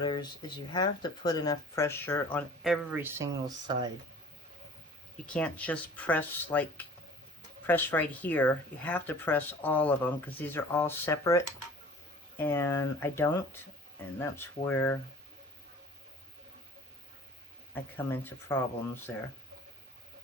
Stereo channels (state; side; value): normal; both; correlation 0.47